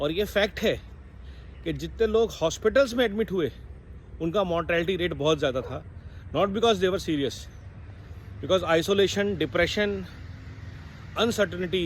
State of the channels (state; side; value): identical; both; correlation 1.00